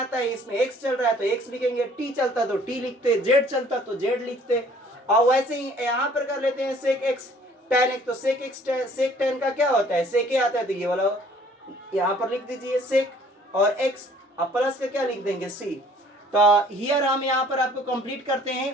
है, इसमें x चल रहा है तो x लिखेंगे, t चलता तो t लिखते, z चलता तो z लिखते। और वैसे ही यहाँ पर कर लेते हैं सेक x tan x, तो सेक x सेक tan का क्या होता है सेक a आता है, तो ये वाला यहाँ पर लिख दीजिए सेक और x अब प्लस का क्या लिख देंगे c। तो हियर हम यहाँ पर आपको कंप्लीट करते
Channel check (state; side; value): normal; both; correlation 0.56